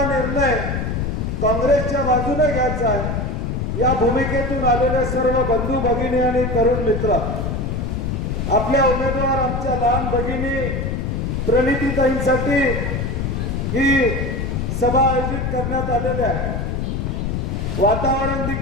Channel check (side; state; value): left; noise; rumble, 1 dB below the sound